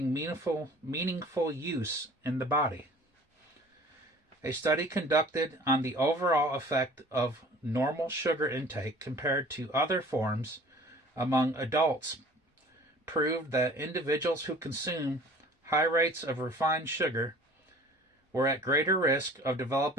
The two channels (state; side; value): normal; both; correlation 0.47